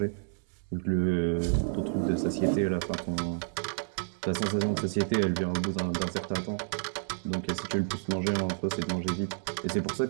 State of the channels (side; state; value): left; silent; 58 dB below the other